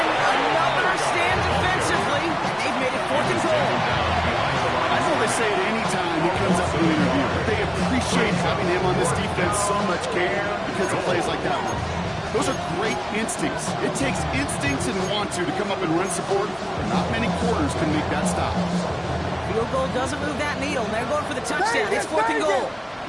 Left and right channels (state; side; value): identical; both; correlation 1.00